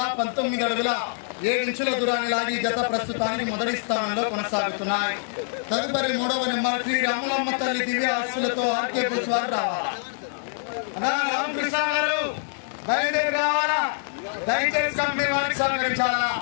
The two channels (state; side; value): silent; right; digital silence